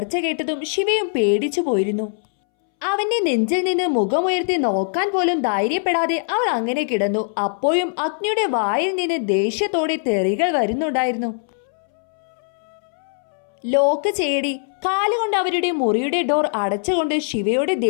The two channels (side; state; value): right; silent; 64 dB below the other